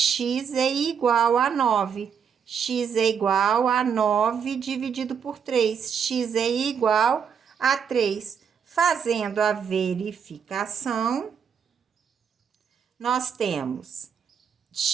é igual a 9. X é igual a 9 dividido por 3. X é igual a 3. Fazendo a verificação, nós temos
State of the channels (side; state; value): left; quieter; 7.2 dB